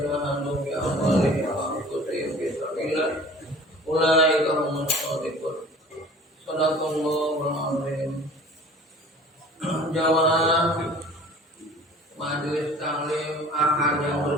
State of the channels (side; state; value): both; normal; correlation 0.45